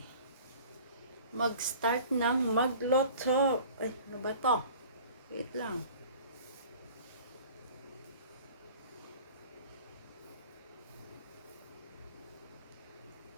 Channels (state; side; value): inverted; both; correlation -0.45